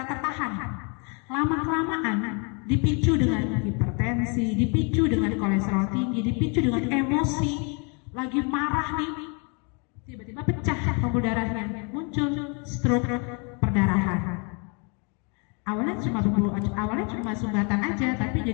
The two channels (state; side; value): quieter; right; 34.8 dB